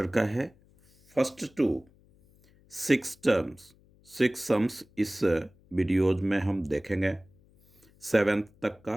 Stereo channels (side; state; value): left; noise; hum, 30 dB below the sound